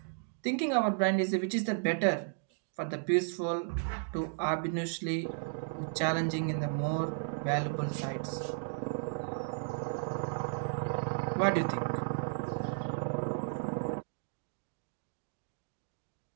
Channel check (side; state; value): left; silent; digital silence